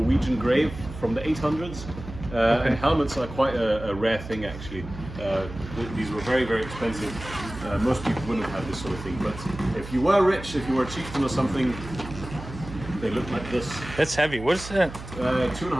grave from the 800s. And helmets are quite a rare thing, actually. These were very, very expensive. Most people wouldn't have this sort of thing. But if you were rich, if you were a chieftain or something, they look like this. That's heavy. What is that?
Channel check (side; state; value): right; noise; hum, 12 dB below the sound